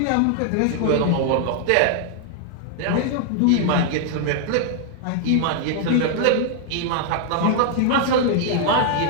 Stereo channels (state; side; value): different; both; correlation 0.00